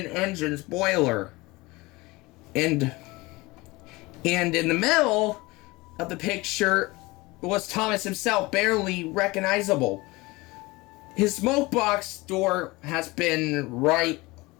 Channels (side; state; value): right; quieter; 22.5 dB